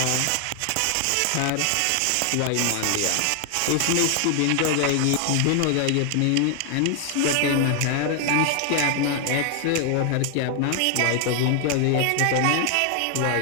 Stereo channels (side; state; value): both; different; correlation 0.00